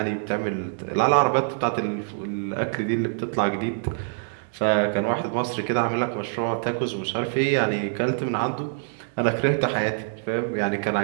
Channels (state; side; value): silent; left; digital silence